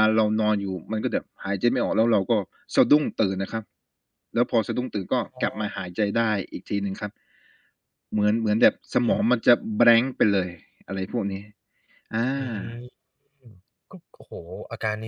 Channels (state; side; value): identical; both; correlation 1.00